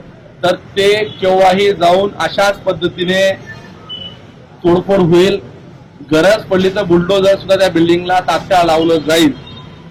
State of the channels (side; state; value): both; identical; correlation 1.00